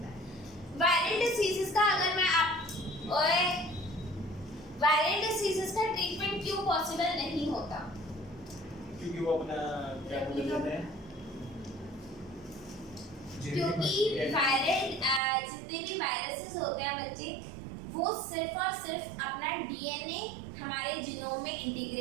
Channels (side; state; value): left; drops out; at 15.2 s